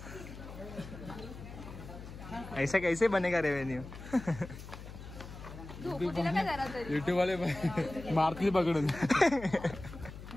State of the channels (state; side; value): noise; left; hum, 13 dB below the sound